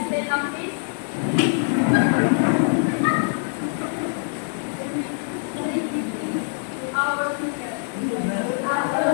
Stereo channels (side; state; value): right; silent; digital silence